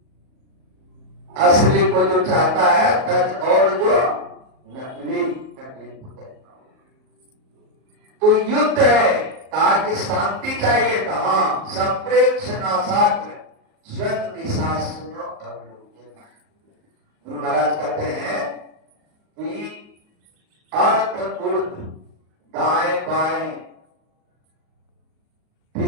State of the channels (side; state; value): left; late; 38 ms